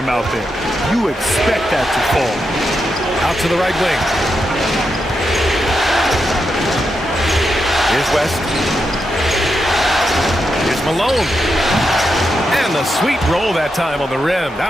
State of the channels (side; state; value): both; normal; correlation 0.85